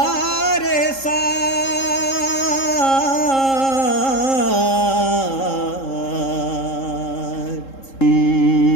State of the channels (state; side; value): late; right; 3.7 ms